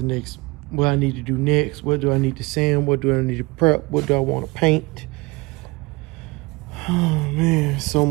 next, what I need to do next. What do I need to sand? What do I need to prep? What do I want to paint? Oh man, so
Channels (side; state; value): left; quieter; 24.3 dB